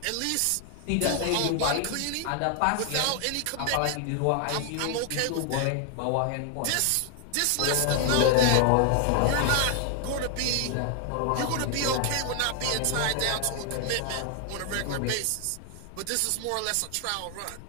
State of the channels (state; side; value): different; both; correlation 0.00